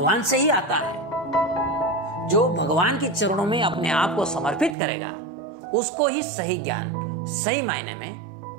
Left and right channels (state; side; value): drops out; left; at 4.8 s